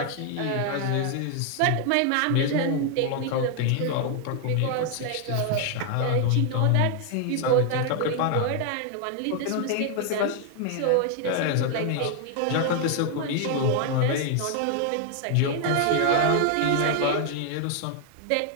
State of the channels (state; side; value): different; both; correlation 0.00